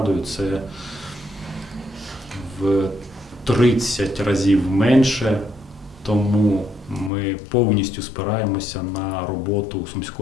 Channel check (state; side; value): drops out; right; at 7.1 s